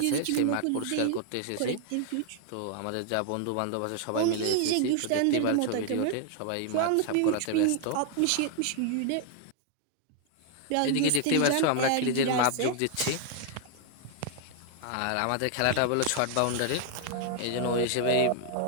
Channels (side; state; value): both; different; correlation 0.00